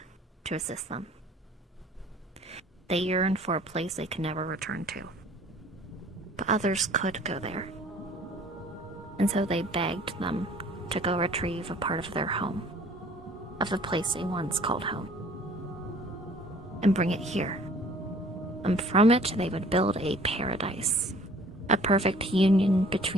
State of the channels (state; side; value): normal; both; correlation 0.53